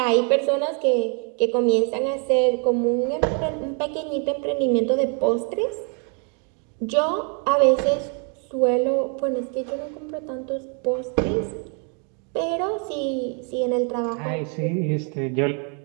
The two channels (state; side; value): quieter; left; 39.2 dB